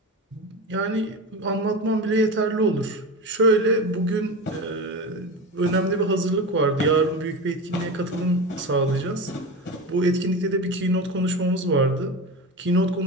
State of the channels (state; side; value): normal; both; correlation 0.25